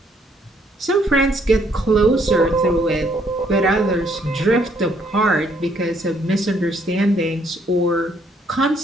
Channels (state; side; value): normal; both; correlation 0.67